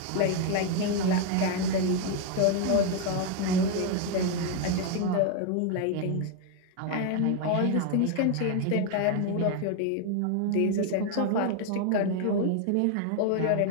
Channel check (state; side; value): different; both; correlation 0.00